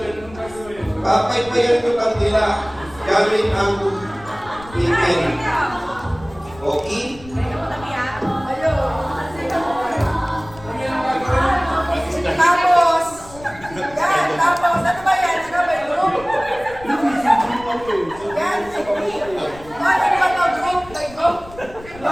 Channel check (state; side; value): noise; left; rumble, 19 dB below the sound